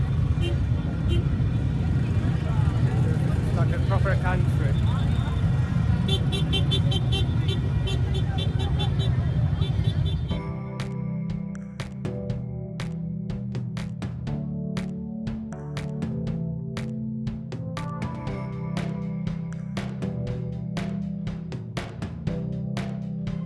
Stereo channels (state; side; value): identical; both; correlation 1.00